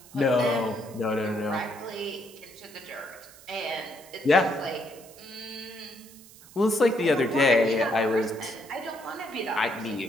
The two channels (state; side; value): noise; right; hiss, 21 dB below the sound